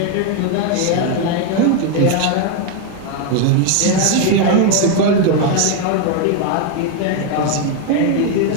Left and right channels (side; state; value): both; different; correlation 0.01